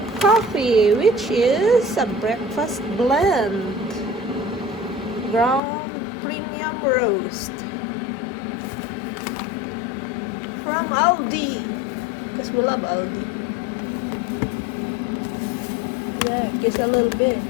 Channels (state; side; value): drops out; right; at 5.6 s